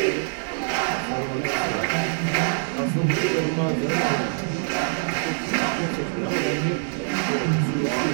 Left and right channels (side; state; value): left; silent; 62 dB below the other